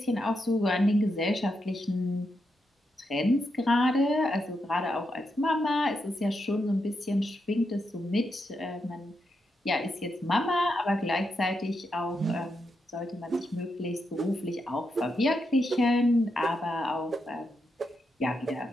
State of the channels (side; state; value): both; normal; correlation 0.84